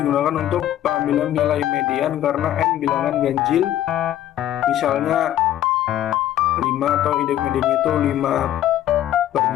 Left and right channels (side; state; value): right; quieter; 12.3 dB